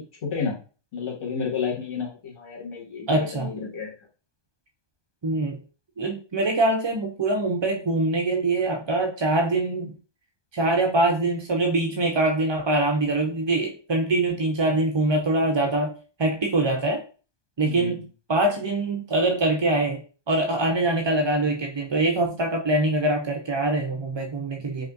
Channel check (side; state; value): left; late; 1.2 ms